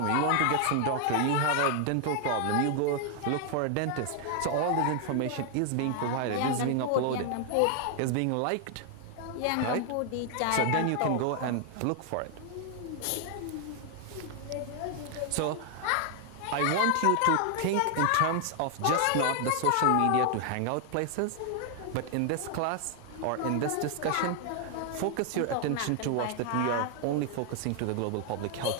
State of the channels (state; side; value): different; both; correlation 0.00